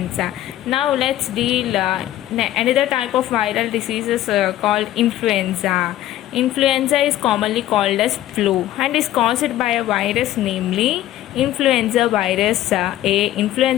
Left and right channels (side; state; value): right; quieter; 13.6 dB